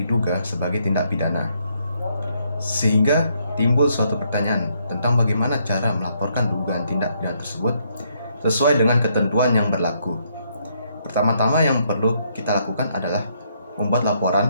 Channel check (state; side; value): inverted; both; correlation -0.72